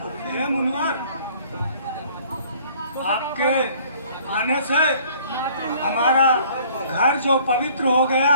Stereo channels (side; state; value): both; inverted; correlation -0.55